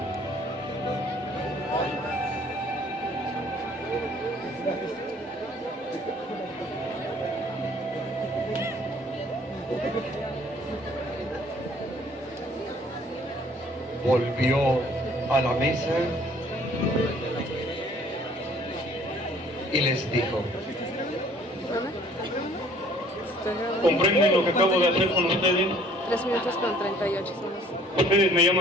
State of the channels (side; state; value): both; normal; correlation 0.56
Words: Volvió a la mesa y les dijo: ¿comprenden lo que acabo de hacer con ustedes? 3 minutos con 38 somos. Ustedes me